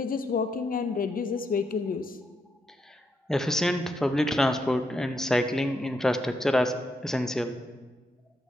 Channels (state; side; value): normal; both; correlation 0.80